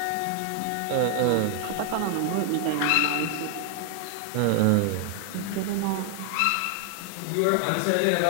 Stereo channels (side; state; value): both; different; correlation 0.00